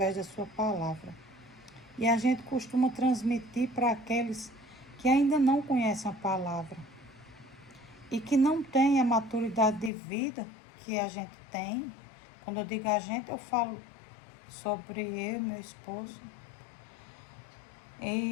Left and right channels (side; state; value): right; drops out; at 9.9 s